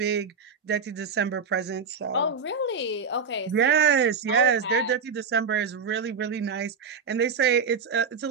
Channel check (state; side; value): quieter; left; 5.4 dB